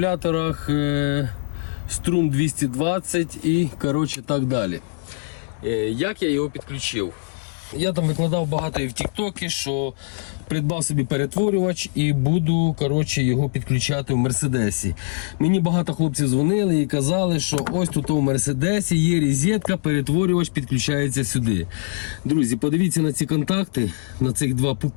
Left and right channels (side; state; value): right; silent; 64 dB below the other